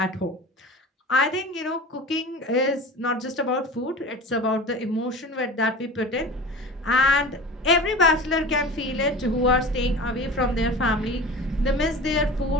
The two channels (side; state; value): both; normal; correlation 0.35